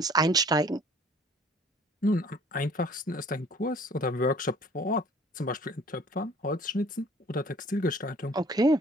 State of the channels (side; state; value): both; normal; correlation 0.53